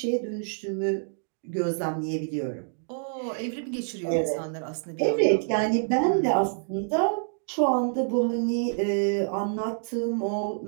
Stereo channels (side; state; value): left; silent; digital silence